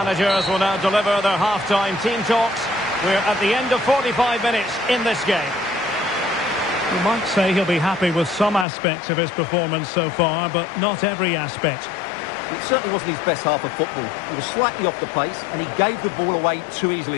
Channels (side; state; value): right; drops out; at 8.7 s